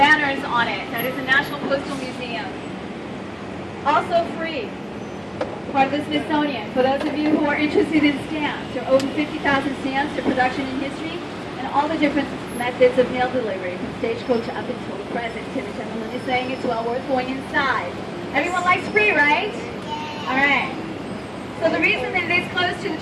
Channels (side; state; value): both; identical; correlation 1.00